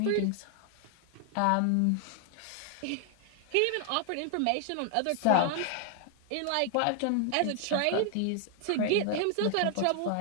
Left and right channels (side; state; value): both; different; correlation 0.00